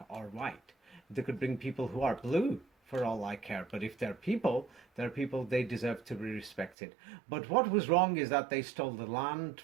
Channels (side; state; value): left; drops out; at 6.7 s